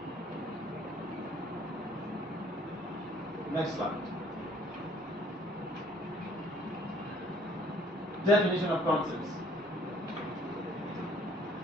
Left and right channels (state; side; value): normal; both; correlation 0.58